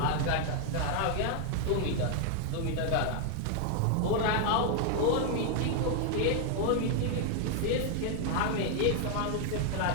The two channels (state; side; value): different; both; correlation 0.00